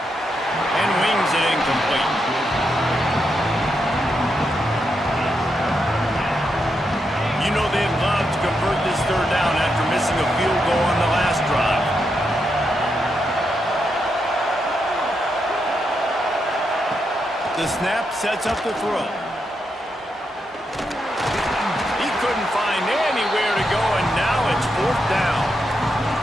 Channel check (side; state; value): both; normal; correlation 0.83